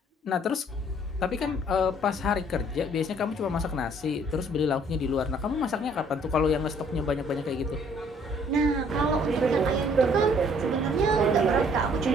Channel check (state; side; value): normal; both; correlation 0.60